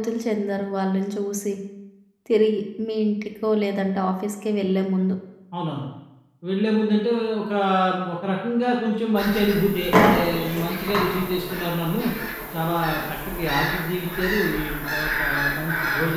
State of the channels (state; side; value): identical; both; correlation 1.00